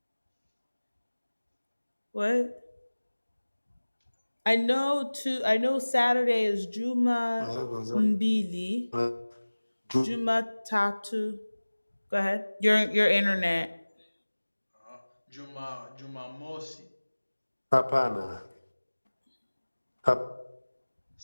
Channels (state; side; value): inverted; both; correlation -1.00